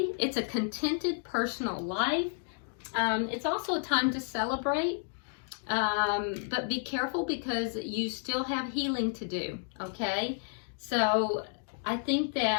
It's a contented personal life. It's also a time to celebrate, but be careful because you still have healing to do, okay? So I think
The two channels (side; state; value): right; silent; 57 dB below the other